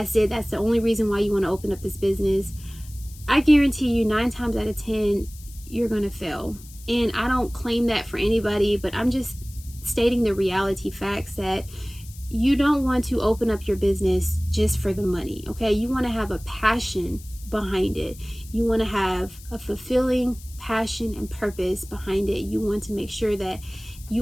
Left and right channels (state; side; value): noise; left; hiss, 20 dB below the sound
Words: it, that's the only reason why you want to open up this business, I guarantee you 9 times out of 10 you're gonna fail. And I don't claim that for anybody, but I'm just stating the reality facts that you don't want to open up your business just for the money, okay? You want to have a passion behind it. You want to have a fulfilling passion and purpose behind it. You want to make sure that